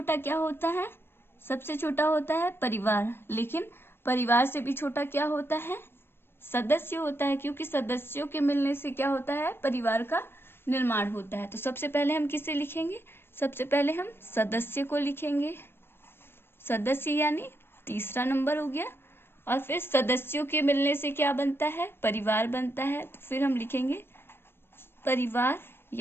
क्या होता है? सबसे छोटा होता है परिवार, लेकिन परिवार से भी छोटा क्या होता है? सदस्य होता है, क्योंकि सदस्यों के मिलने से क्या होता है? परिवार का निर्माण होता है। तो सबसे पहले हम किसे लिखेंगे? सबसे पहले हम सदस्य को लिखेंगे। सदस्य यानी तीसरा नंबर हो गया, और फिर सदस्यों के मिलने से क्या बनता है? परिवार बनता है। तो फिर हम लिखेंगे परिवार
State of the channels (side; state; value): right; late; 0.11 ms